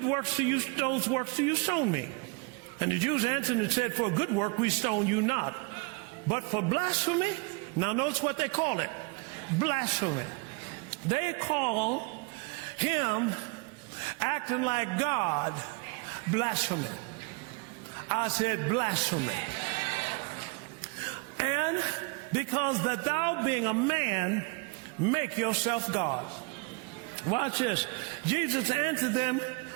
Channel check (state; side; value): quieter; left; 29.4 dB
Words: works those works do you stone me? And the Jews answered and said, for a good work we stone you not, but for blasphemy. Now notice what they call it. Blasphemy. They call him acting like God blasphemy. I said blasphemy. And because that thou being a man, make yourself God. Watch this. Jesus answered them,